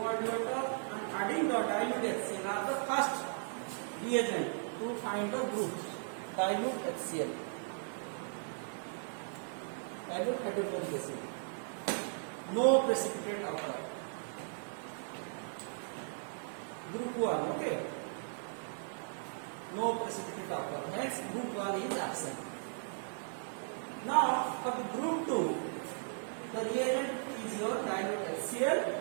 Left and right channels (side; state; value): left; silent; 53 dB below the other